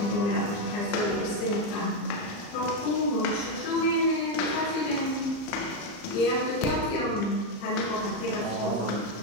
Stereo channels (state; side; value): late; right; 35 ms